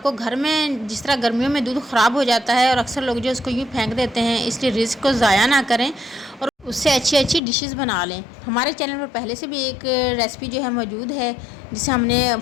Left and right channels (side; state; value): right; drops out; at 7.4 s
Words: घर में, जिस तरह गर्मियों में दूध ख़राब हो जाता है और अक्सर लोग जो उसको यूँ फेंक देते हैं, इसलिए रिस्क को ज़ाया ना करें और उससे अच्छी अच्छी डिशेस बना लें। हमारे चैनल पर पहले से भी एक रेसिपी जो है मौजूद है, जिसे हमने